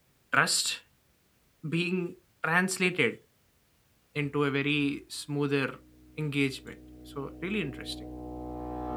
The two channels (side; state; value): both; identical; correlation 1.00